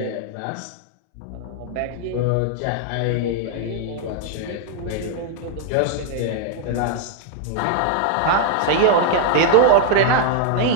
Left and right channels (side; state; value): both; different; correlation 0.00